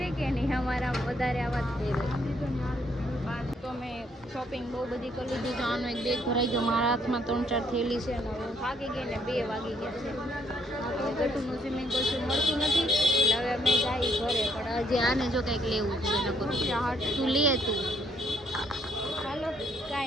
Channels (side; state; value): both; normal; correlation 0.69